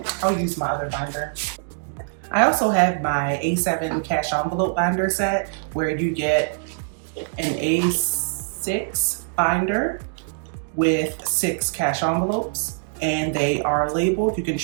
I'll use my other binder. I also have my A7 cash envelope binder set where you get an A6 binder with 6 cash envelopes. And they are labeled. You can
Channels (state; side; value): silent; left; digital silence